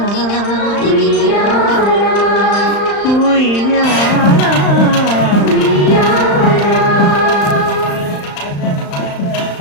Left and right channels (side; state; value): right; late; 35 ms